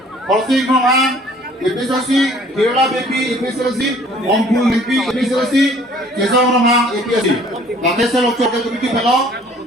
Horsing Rohan, IPSC, Kerala Bibi, IPSC, Ompul Bibi, IPSC, Kesang Rohan, IPSC. Lakesel Lokcor ke Bibi belok.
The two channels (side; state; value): both; normal; correlation 0.54